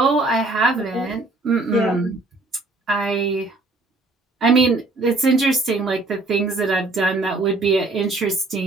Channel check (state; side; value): quieter; left; 3.1 dB